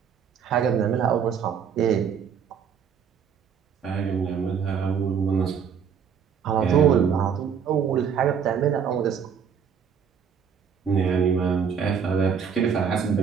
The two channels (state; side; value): quieter; left; 7.2 dB